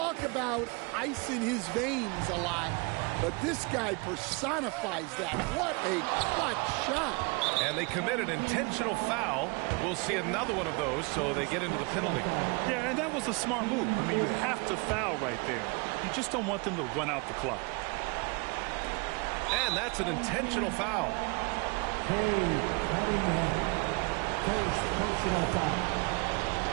about ice in his veins a lot, but this guy personifies that. What a clutch shot. And they committed intentional foul. We'll see another one of those, so they get into the penalty. Yeah, and that was a smart move. I mean, you have to foul right there. You just don't want them to run out the clock. And that's an intentional foul.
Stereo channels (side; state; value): left; quieter; 29.8 dB